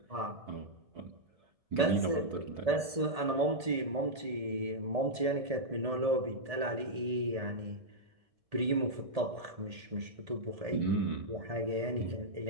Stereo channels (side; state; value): left; late; 1.8 ms